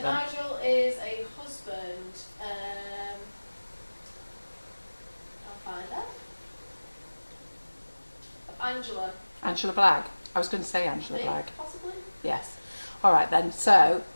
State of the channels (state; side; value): inverted; both; correlation -1.00